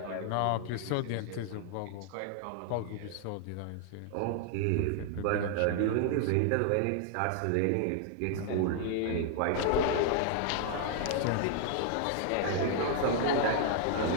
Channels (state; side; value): different; both; correlation 0.00